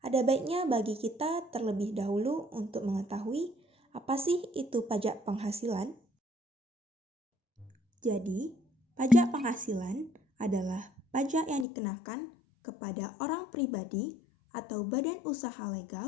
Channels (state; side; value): drops out; right; at 11.7 s